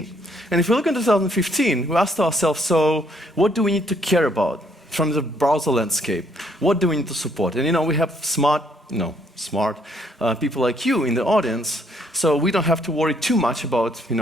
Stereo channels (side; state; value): both; normal; correlation 0.68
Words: And if we look in 2015, we asked ourselves, so what do we need to care about from the browser landscape? What do we need to support? And we have smart people like you in the audience, so we don't have to worry too much about,